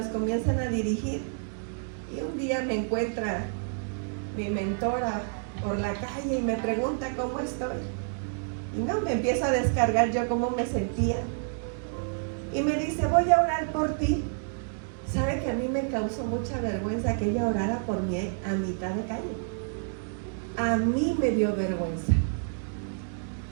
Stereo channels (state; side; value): silent; left; digital silence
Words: comienzan a dirigir. Y un día me encuentra mi mentora por la calle y me pregunta cómo estoy. Y no, me empiezo a descargar yo cómo me sentía. Y me dice, voy a orar por ti. ¿Sabe que a mí me causó mucha vergüenza que ella orara por mí a mitad de calle? A mí me dio vergüenza.